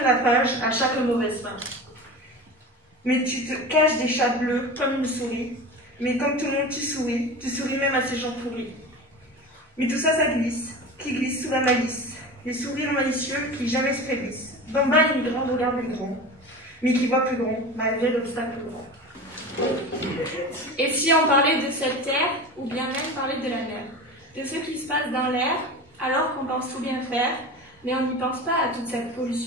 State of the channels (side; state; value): both; normal; correlation 0.31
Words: la page à chaque mauvaise fin. Mais tu te caches des chats bleus comme une souris. Mais comme tout le monde, tu souris même à ces gens pourris. Mais tout ça, ça glisse, qui glisse sous la malice. Les sourires malicieux qui jamais se faiblissent. D'en bas, une grande regarde le grand, mais qui voit plus grand, malgré l'obstacle grand. Et si on parlait de cette terre, ou bien même parlait de la mer, de ce qui se passe dans l'air, alors qu'on pense tout bien faire, mais on n'y pense pas à toute cette